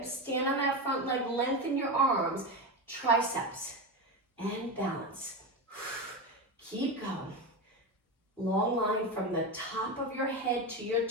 stand on that front leg, lengthen your arms, triceps, and balance. Keep going. Long line from the top of your head to your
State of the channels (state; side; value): normal; both; correlation 0.18